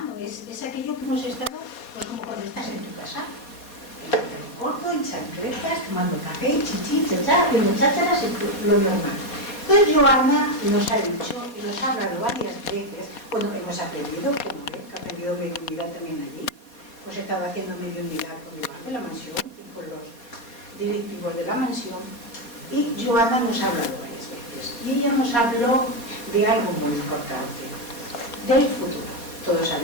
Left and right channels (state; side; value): late; right; 4.2 ms